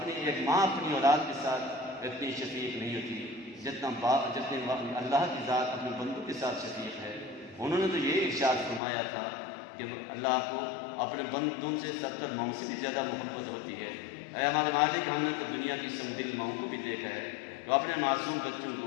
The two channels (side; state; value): right; drops out; at 8.8 s